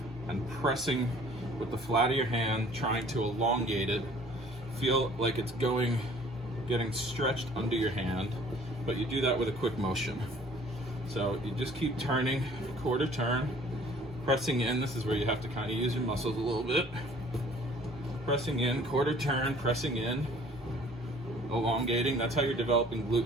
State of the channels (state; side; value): normal; both; correlation 0.53